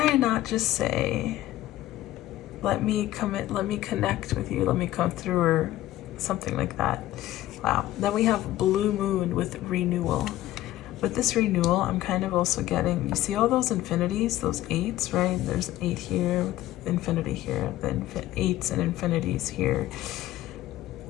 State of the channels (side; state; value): right; quieter; 14.9 dB